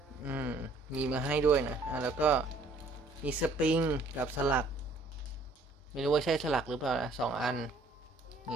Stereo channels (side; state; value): left; quieter; 3.2 dB